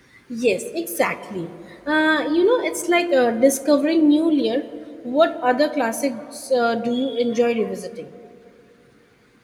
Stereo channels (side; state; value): both; identical; correlation 1.00